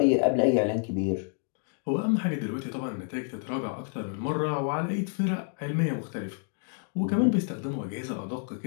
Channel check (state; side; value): silent; right; 57 dB below the other